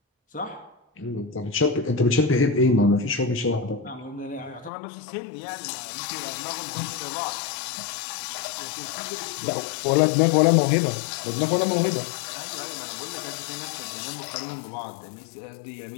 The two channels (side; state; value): right; drops out; at 4.7 s